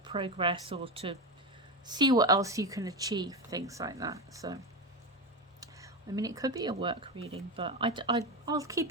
or to see what else you can achieve, things like that. So I mean, it could be a work reading, but I'll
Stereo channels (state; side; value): normal; both; correlation 0.16